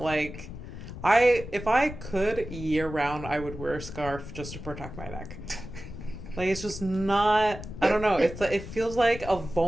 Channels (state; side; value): noise; left; rumble, 11 dB below the sound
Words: like... If I could, year round, I would wear a scarf just to protect my neck. Like, it's just not... I don't know. It feels like a